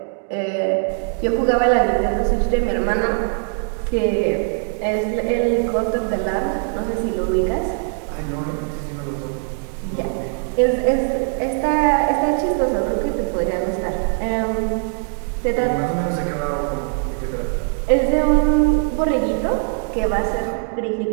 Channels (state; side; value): silent; left; 55 dB below the other